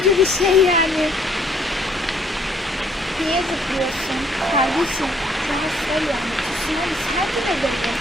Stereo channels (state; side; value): normal; both; correlation 0.65